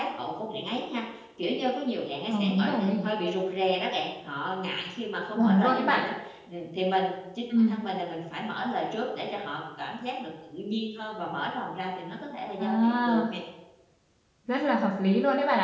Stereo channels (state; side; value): identical; both; correlation 1.00